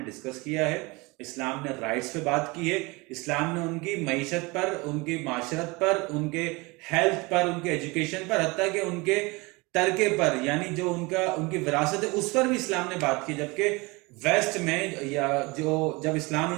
ڈسکس کیا ہے, اسلام نے رائٹس پہ بات کی ہے, اسلام نے ان کی معیشت پر, ان کی معاشرت پر, ان کے ہیلتھ پر, ان کے ایجوکیشن پر, حتیٰ کہ ان کے ترکے پر, یعنی جو ان کی وراثت ہے اس پر بھی اسلام نے بات کی. جبکہ ویسٹ میں یا جب اسلام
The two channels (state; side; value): quieter; left; 25.2 dB